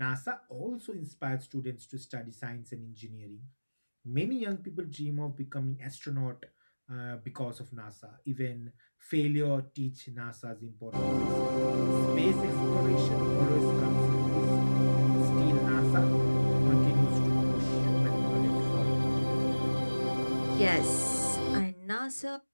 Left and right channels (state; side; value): inverted; both; correlation -1.00